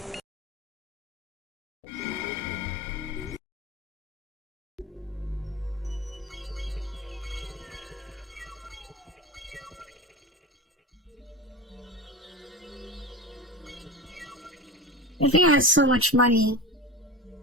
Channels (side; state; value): both; normal; correlation 0.27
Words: I think I have so much money.